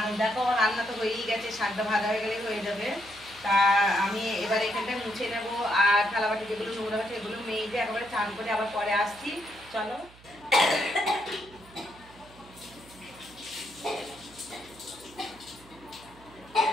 দেখো আমার রান্না তো হয়েই গেছে, শাকটা ভাজা হয়ে গেলেই হয়ে যাবে। তা আমি এবার এখানটায় মুছে নেবো, আর থালাবাটি যেগুলো নোংরা আছে এগুলো মেজে একেবারে চান করে আবার পরে আসছি। চলো।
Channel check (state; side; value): noise; right; hum, 23 dB below the sound